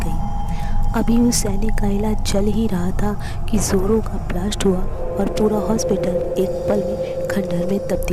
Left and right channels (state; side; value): identical; both; correlation 1.00